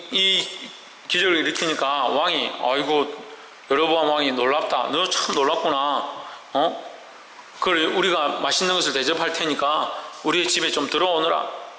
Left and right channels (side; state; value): both; identical; correlation 1.00